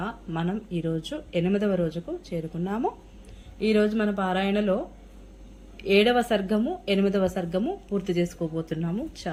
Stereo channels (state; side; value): identical; both; correlation 1.00